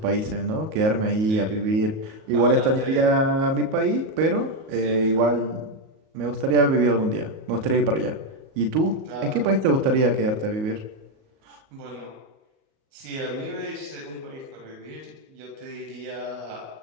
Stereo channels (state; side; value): late; left; 38 ms